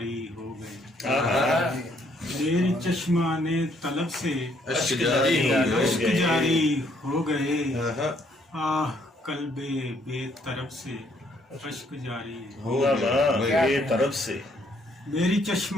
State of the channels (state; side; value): normal; both; correlation 0.68